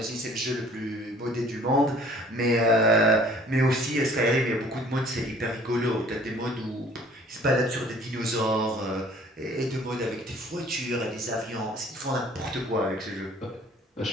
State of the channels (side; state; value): both; normal; correlation 0.54